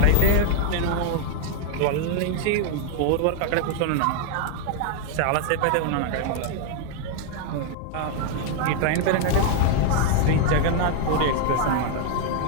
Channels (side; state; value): both; different; correlation 0.00